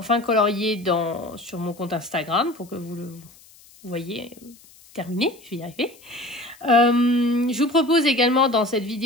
colorié sur mon compte Instagram pour que vous le voyez terminé, je vais y arriver. Je vous propose également dans cette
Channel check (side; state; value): left; noise; hiss, 25 dB below the sound